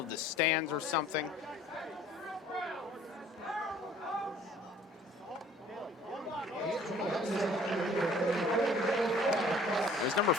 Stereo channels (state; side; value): normal; both; correlation 0.53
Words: the stands or something. It was number